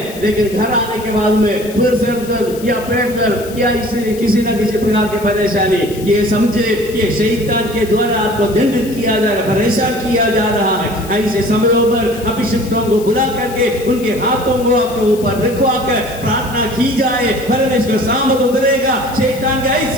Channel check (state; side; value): noise; left; hiss, 17 dB below the sound